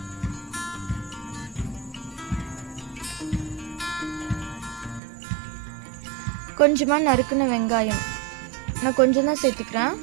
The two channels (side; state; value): left; drops out; at 5.0 s